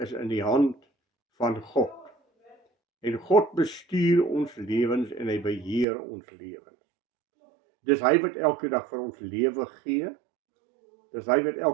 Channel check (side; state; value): left; drops out; at 5.9 s